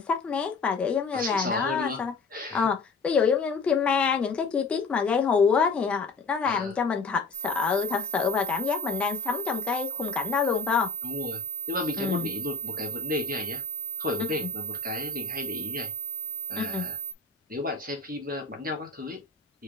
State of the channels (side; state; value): right; quieter; 4.0 dB